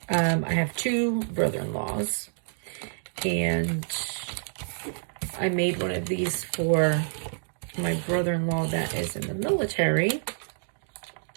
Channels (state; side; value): silent; left; digital silence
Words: I have two brother-in-laws, and I made one of these for my brother-in-law that is in the military,